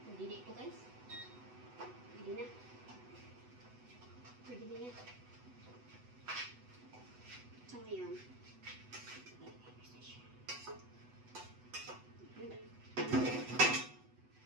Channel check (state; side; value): late; left; 8.0 ms